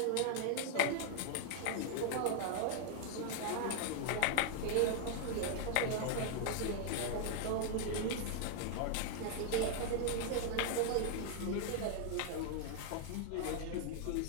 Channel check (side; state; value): both; different; correlation 0.00